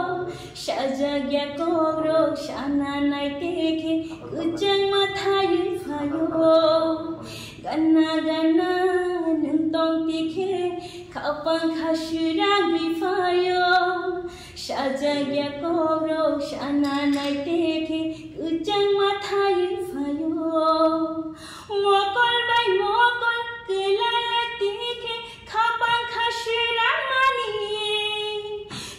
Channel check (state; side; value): identical; both; correlation 1.00